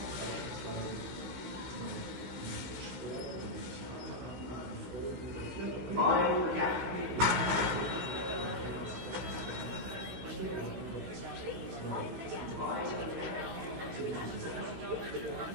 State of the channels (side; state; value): left; late; 16 ms